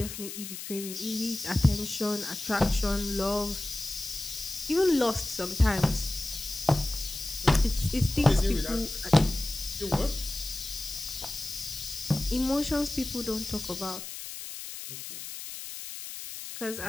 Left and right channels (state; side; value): noise; left; hiss, 9 dB below the sound